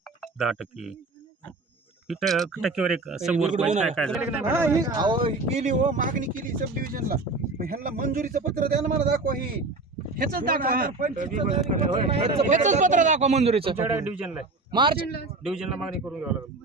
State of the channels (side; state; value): left; quieter; 3.4 dB